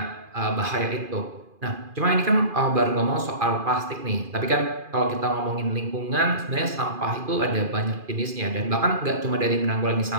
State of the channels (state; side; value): late; left; 2.4 ms